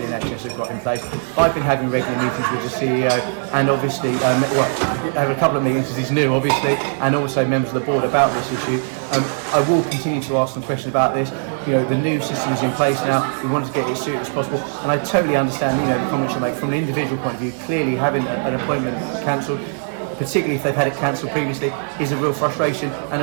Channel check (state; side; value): silent; left; 66 dB below the other